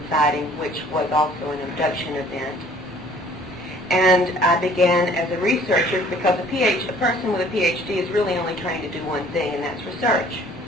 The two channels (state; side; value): normal; both; correlation 0.55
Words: sighting, which was also an abduction event. And I began as a researcher, because a person with a PhD is really only trying to do one thing, and that's research.